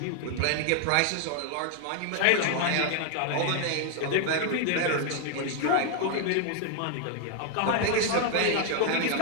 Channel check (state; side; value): different; both; correlation 0.00